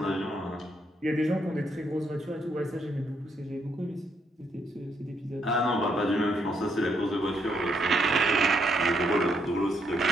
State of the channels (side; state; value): both; normal; correlation 0.75